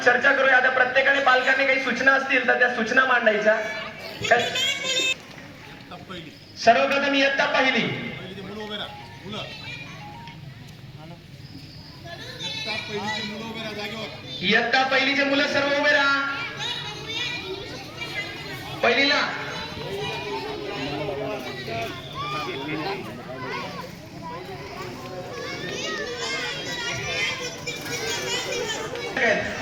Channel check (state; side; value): identical; both; correlation 1.00